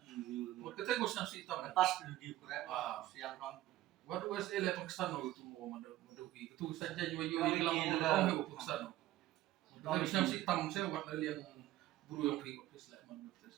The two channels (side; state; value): left; quieter; 15.1 dB